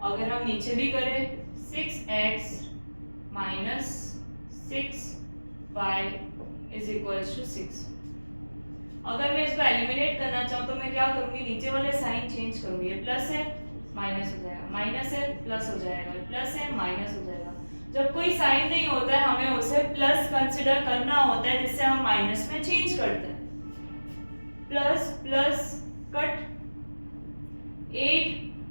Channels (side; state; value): both; inverted; correlation -1.00